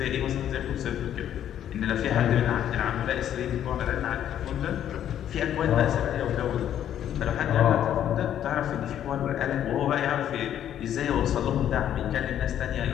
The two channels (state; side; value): quieter; right; 10.5 dB